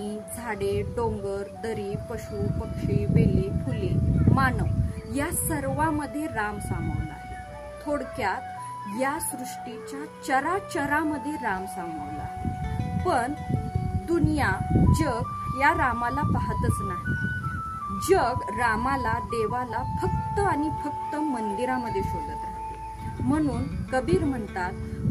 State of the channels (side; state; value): both; identical; correlation 1.00